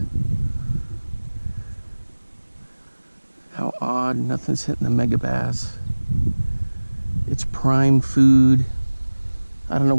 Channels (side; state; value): both; inverted; correlation -1.00